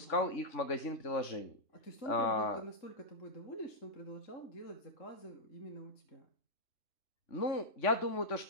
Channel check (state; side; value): late; right; 3.5 ms